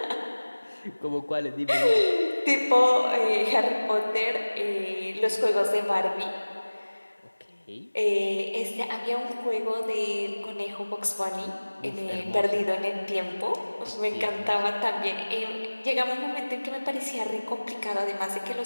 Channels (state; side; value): inverted; both; correlation -1.00